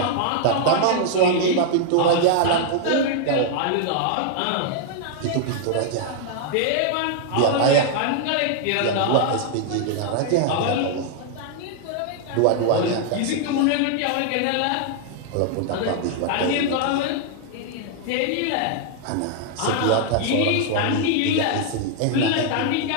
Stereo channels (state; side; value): different; both; correlation 0.00